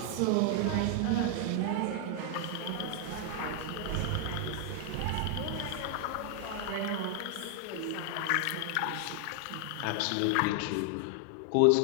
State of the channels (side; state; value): both; different; correlation 0.00